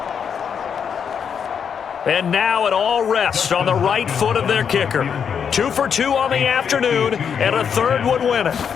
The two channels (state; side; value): quieter; right; 7.3 dB